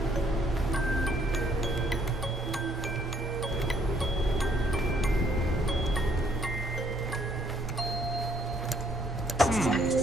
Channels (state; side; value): normal; both; correlation 0.67